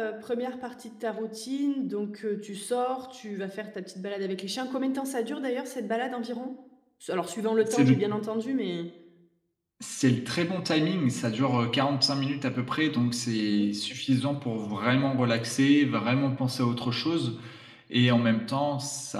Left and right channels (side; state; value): both; identical; correlation 1.00